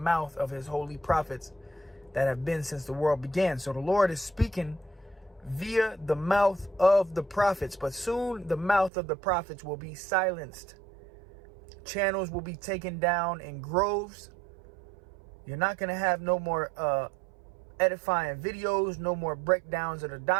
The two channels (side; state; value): left; drops out; at 8.9 s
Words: of his holy prophets that have been since the world began. So the Lord is speaking via the mouth of the prophets. But soon the mouth of the prophets will be silenced. Channels will be taken down in groves. You're not going to have no more edifying videos, no more breakdowns of the